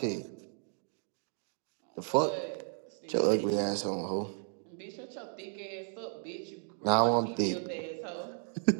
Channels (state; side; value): silent; left; 55 dB below the other